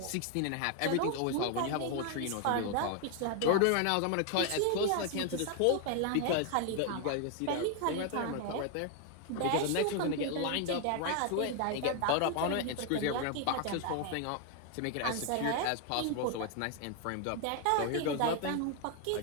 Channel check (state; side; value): different; both; correlation 0.00